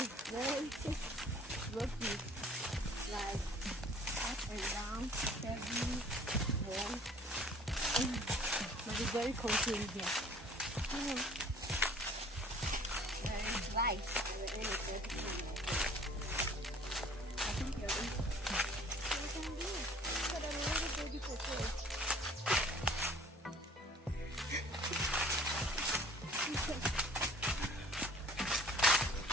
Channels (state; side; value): normal; both; correlation 0.51